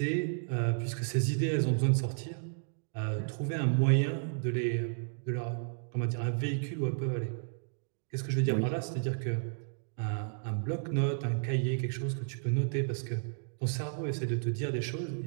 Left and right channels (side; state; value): left; silent; digital silence